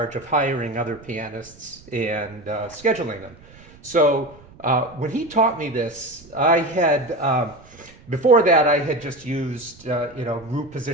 of hiring other pianists and scheduling them. So when he taught me this, I had before that I had just used root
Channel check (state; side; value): noise; right; rumble, 23 dB below the sound